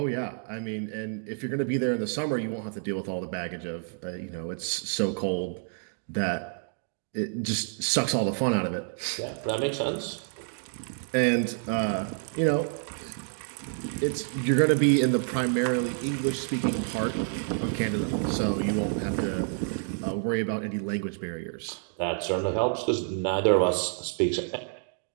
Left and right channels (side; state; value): left; silent; 59 dB below the other